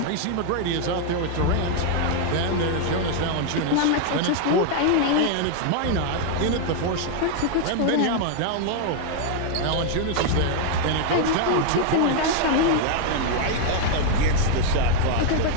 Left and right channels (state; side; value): different; both; correlation 0.00